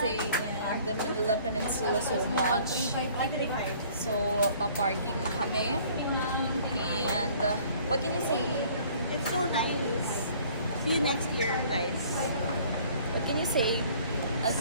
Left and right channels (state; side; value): inverted; both; correlation -0.55